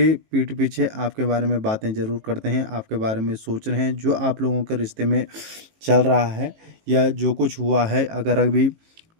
पीठ पीछे आपके बारे में बातें ज़रूर करते हैं, आपके बारे में सोच रहे हैं। जो आप लोगों के रिश्ते में चल रहा है या जो कुछ हुआ है, अगर अभी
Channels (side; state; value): left; late; 18 ms